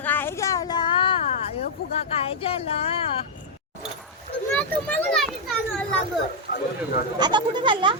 काय झाला? ए फुगा काय झाला? आता कुठे चालला?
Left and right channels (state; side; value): normal; both; correlation -0.04